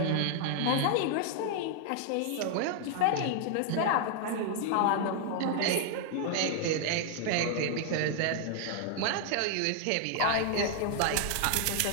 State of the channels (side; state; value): both; different; correlation 0.00